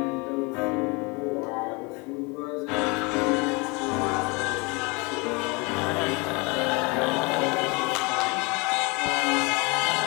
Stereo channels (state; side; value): quieter; right; 28.4 dB